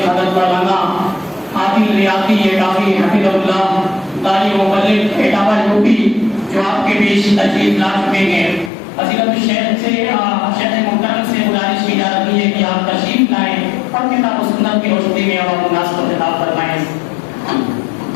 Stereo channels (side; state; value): right; drops out; at 8.7 s